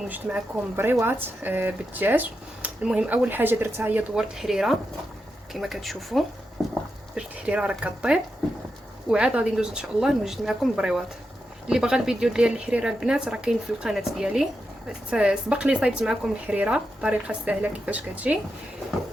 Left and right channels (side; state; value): both; normal; correlation 0.87